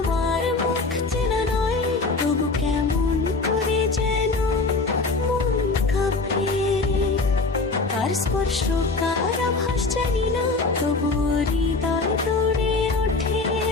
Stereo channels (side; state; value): right; quieter; 3.7 dB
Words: মুখ চেনা নয়, তবু কেমন করে যেন মন কাঁপে। তার স্পর্শ কার আভাস জানি না, তবু হৃদয় দৌড়ে ওঠে